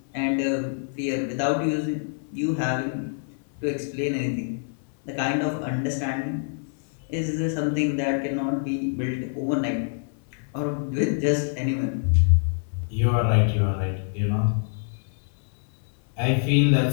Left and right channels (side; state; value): right; silent; 61 dB below the other